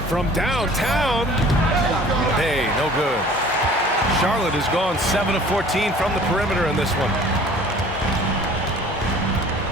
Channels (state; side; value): normal; both; correlation 0.49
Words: From downtown. Bey, no good. Charlotte has gone 7 of 14 from the perimeter in this one.